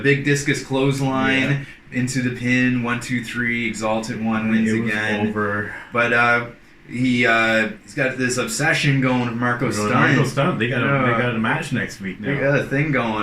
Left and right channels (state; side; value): identical; both; correlation 1.00